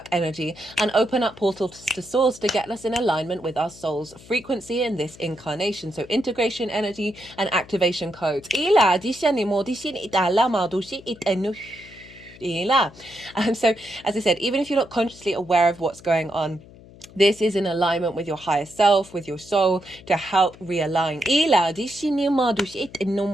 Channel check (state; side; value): noise; left; hum, 21 dB below the sound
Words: energy, and open up portals to source to get us in alignment with our soul's frequency in this incarnation. So integration energy and activation codes. So as I said, even if you're not consciously aware of what's going on, this is in alignment with your higher self, with your soul, to help realign.